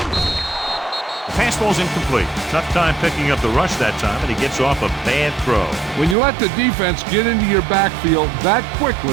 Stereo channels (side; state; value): left; drops out; at 6.2 s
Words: The pass ball's incomplete. Tough time picking up the rush that time, and he gets off a bad throw. When you let the defense get into your backfield that